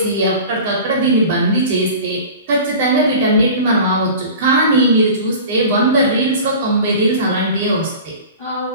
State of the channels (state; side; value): inverted; both; correlation -0.38